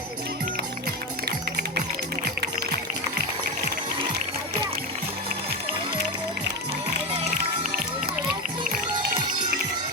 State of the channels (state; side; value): normal; both; correlation 0.16